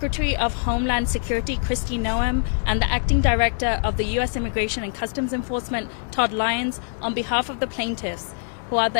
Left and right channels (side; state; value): right; silent; 60 dB below the other